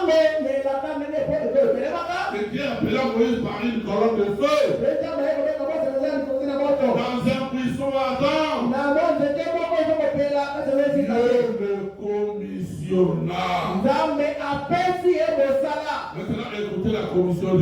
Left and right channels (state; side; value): identical; both; correlation 1.00